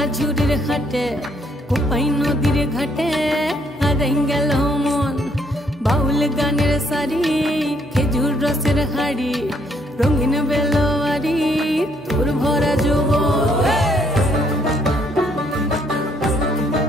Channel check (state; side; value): normal; both; correlation 0.69